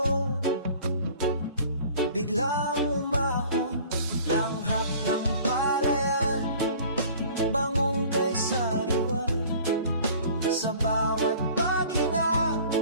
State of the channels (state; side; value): inverted; both; correlation -0.48